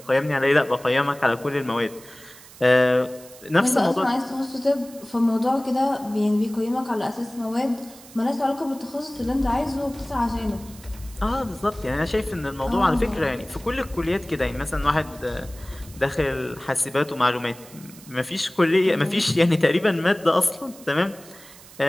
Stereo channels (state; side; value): noise; right; hiss, 20 dB below the sound